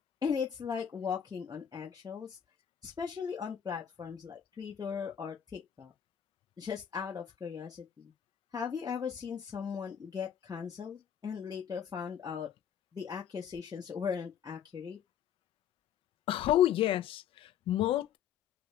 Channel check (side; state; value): right; quieter; 9.0 dB